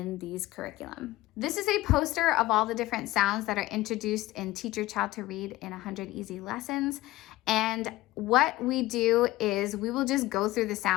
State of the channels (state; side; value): quieter; right; 17.8 dB